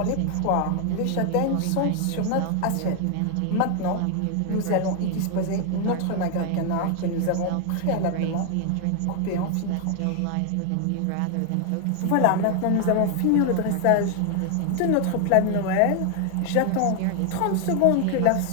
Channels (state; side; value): different; both; correlation 0.00